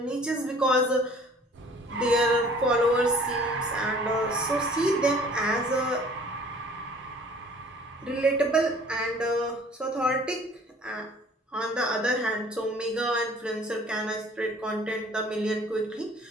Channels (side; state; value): both; normal; correlation 0.52